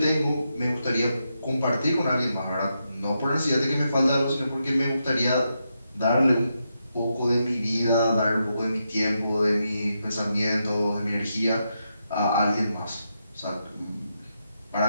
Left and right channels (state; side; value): inverted; both; correlation -0.84